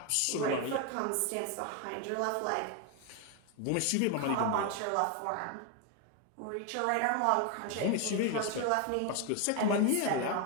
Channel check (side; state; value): both; different; correlation 0.01